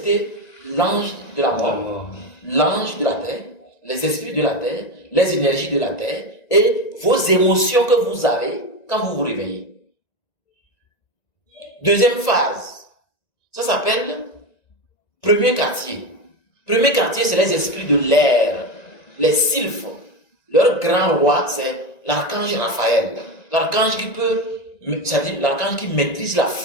l'ange de la mort, l'ange de la terre, les esprits de la terre, les énergies de la terre et vos émotions que vous avez quand vous vous réveillez. Deuxième phase, ça s'appelle premier quartier. Premier quartier, c'est les esprits de l'air, les sylphes. Leur grand roi, c'est l'archange Raphaël. L'archange qui peut, c'est-à-dire l'archange qui maîtrise la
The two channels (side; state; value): right; late; 1.9 ms